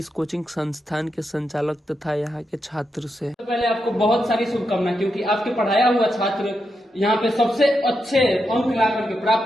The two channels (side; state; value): both; normal; correlation 0.85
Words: कोचिंग संस्थान के संचालक तथा यहाँ के छात्र से। तो पहले आपको बहुत सारी शुभकामनाएं, क्योंकि आपके पढ़ाया हुआ छात्र यहाँ पे सबसे अच्छे अंक ला करके